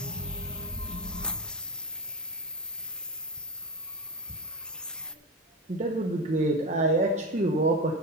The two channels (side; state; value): both; normal; correlation 0.19